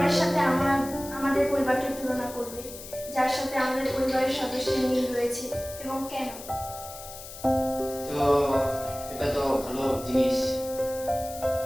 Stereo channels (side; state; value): left; noise; hiss, 14 dB below the sound